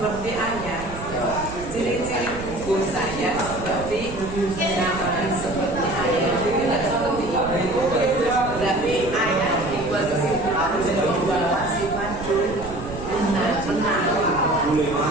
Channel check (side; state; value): right; noise; rumble, 11 dB below the sound